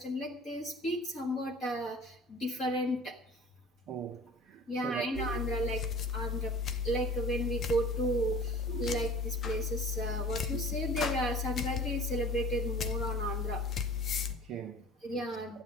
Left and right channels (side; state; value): both; normal; correlation 0.43